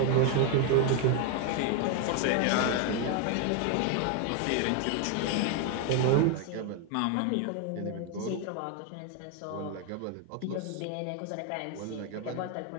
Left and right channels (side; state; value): both; different; correlation 0.01